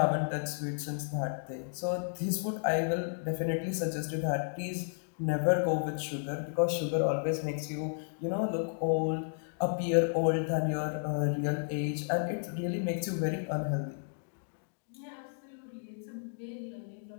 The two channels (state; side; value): silent; right; digital silence